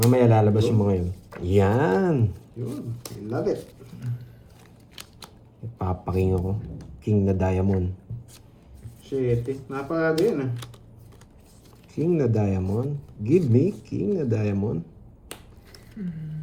lalabas yung mga yun. Yan. Yun. I love it. Papaking ako. King na diamond. Shit eh. Napakaga yun ah. King na diamond. Give me king na diamond.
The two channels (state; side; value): identical; both; correlation 1.00